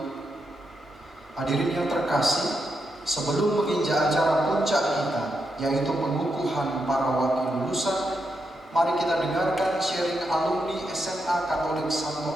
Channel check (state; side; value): normal; both; correlation 0.83